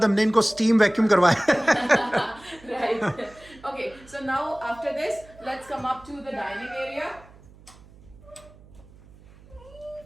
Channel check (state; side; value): noise; right; hum, 24 dB below the sound